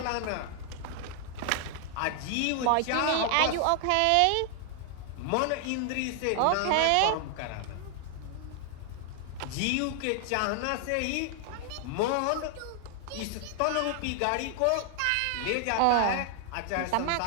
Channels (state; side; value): different; both; correlation 0.00